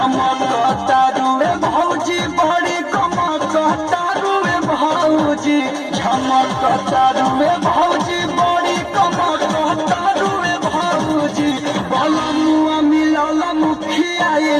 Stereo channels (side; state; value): both; identical; correlation 1.00